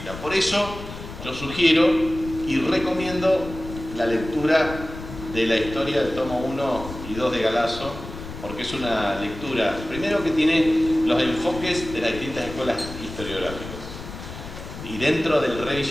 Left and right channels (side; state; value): left; noise; rumble, 11 dB below the sound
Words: Por eso yo sugiero y recomiendo la lectura de la historia del tomo 1 y 2 de Galasso, porque es una lectura, primero, que tiene los enfoques de las distintas escuelas historiográficas. Y dentro del